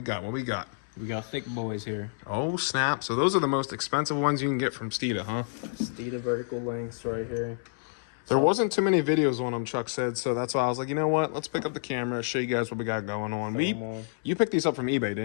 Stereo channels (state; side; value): silent; right; 59 dB below the other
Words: got? We got thick boys here. Oh, snap. So those are the most expensive ones you can get from Steeda, huh? Steeda vertical lengths right here. There wasn't too many videos on them, Chuck said, so that's why I was like, you know what? Let's pick up the camera, show you guys what we got going on. You picked these up from eBay,